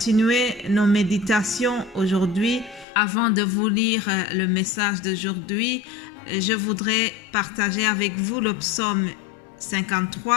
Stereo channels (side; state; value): right; drops out; at 2.9 s